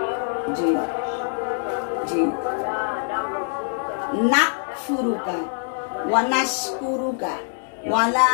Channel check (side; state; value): right; silent; digital silence